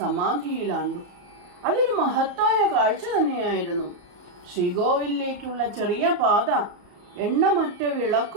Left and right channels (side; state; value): left; late; 34 ms